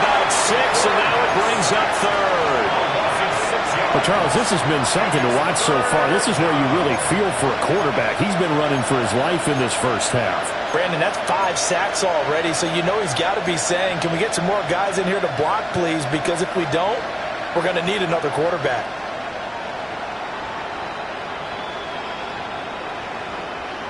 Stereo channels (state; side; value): identical; both; correlation 1.00